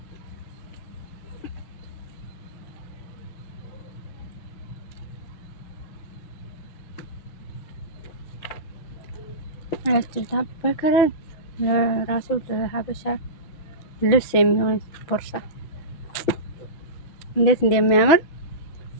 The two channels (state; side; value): late; right; 6.2 ms